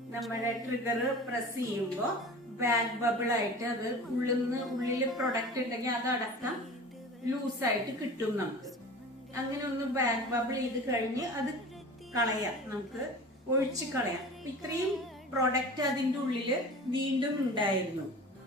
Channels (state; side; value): normal; both; correlation 0.37